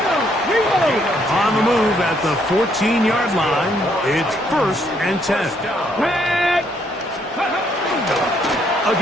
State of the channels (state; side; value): normal; both; correlation 0.70